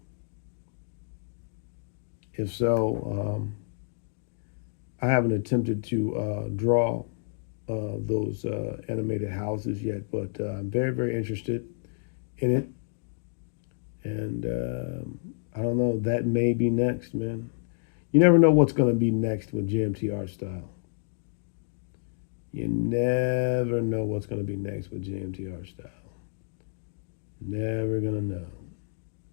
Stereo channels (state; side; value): silent; right; digital silence